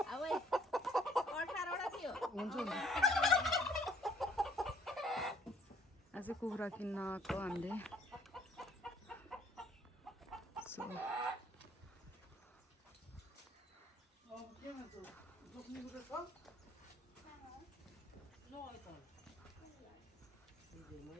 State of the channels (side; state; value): both; normal; correlation 0.61